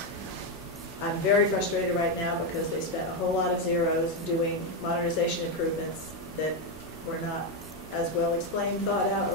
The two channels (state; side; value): normal; both; correlation 0.06